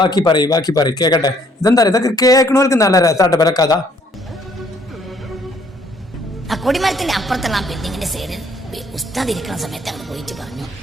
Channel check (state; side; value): normal; both; correlation 0.64